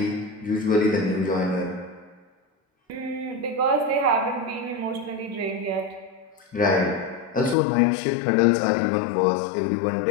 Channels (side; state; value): right; drops out; at 7.6 s